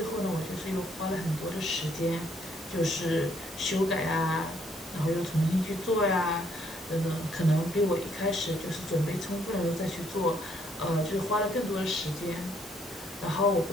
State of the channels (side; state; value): both; normal; correlation 0.68